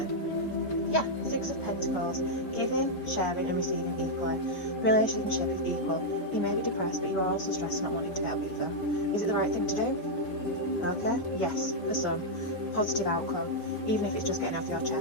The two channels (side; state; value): right; late; 5.1 ms